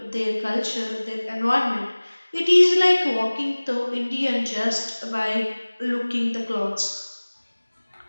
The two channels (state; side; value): inverted; both; correlation -1.00